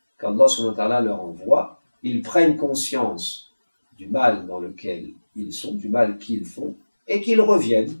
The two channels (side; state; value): both; inverted; correlation -1.00